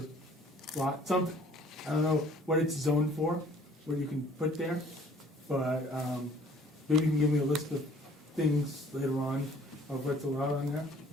lot, something. I don't know what it's zoned for, what you can put there, but maybe you can give me a list of things later on of what's allowed on there.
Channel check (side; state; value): both; normal; correlation 0.55